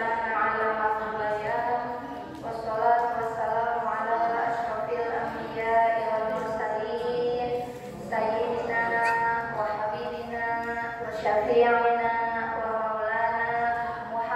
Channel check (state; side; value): identical; both; correlation 1.00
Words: 'allamahu bayan, wassalatu wassalamu ala asyrofil anbiya'i wal mursalin, sayyidina wa habibina wa syafi'ina wa maulana